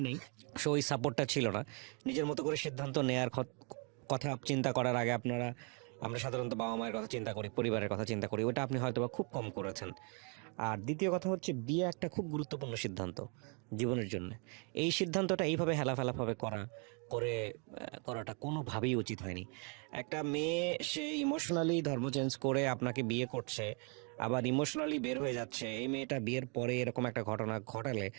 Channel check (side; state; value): left; quieter; 36.4 dB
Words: নেই, সো ওই সাপোর্টটা ছিল না। নিজের মতো করে সিদ্ধান্ত নেয়ার কথা চিন্তা করার আগে আমরা সাধারণত বাবা মায়ের কথা চিন্তা করি, পরিবারের কথা চিন্তা করি, ওটা আপনি হয়তো বা খুব কম করেছেন। আর দ্বিতীয় কথা হচ্ছে বিয়ে একটা খুব গুরুত্বপূর্ণ সিদ্ধান্ত জীবনের জন্য। এই সিদ্ধান্তটা এইভাবে হেলাফেলাভাবে করাটা কোনোভাবেই উচিত হয়নি। একটা মেয়ে সে ইমোশনালি ধর্ম চেঞ্জ করে আপনাকে বিয়ে করছে, আবার ইমোশনালি বের হয়ে যাচ্ছে, এই মেয়েটা বিয়ের পরে এরকম একটা ঘটনা ঘটালে